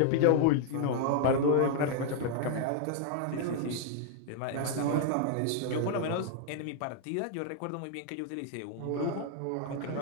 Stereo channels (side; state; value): both; different; correlation 0.00